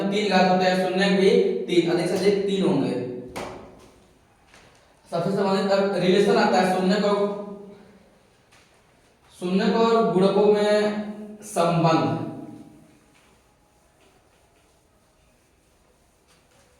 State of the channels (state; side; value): identical; both; correlation 1.00